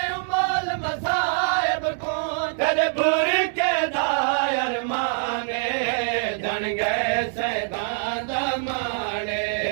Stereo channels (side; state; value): left; silent; digital silence